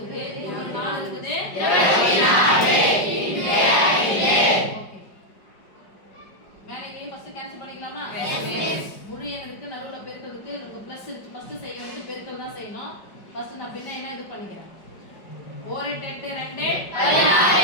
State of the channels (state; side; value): late; right; 5.1 ms